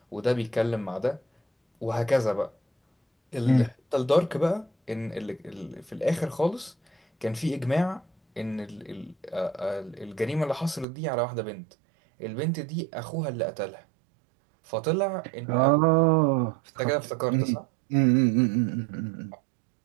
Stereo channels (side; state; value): left; drops out; at 10.9 s